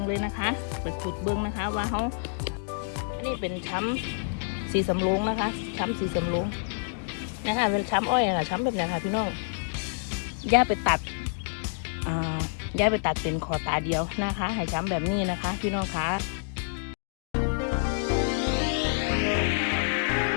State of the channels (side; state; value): right; silent; digital silence